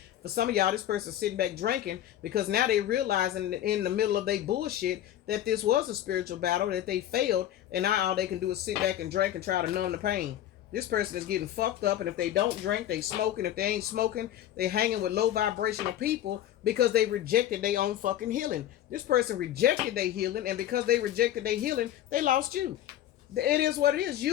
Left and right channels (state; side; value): quieter; right; 12.2 dB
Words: For some of y'all, this person's sitting back drinking because now they realizing in the middle of their bullshit that this was a spiritual battle, that they failed, and now all they can do is sit back and drink and try to numb the pain. This person is getting fucked up, and if they don't drink, they smoking. If they ain't smoking, they hanging with low vibrational people because they rejected their own fucking healing. This person rejected their healing, and because they rejected their healing, they lost you. It is what it is.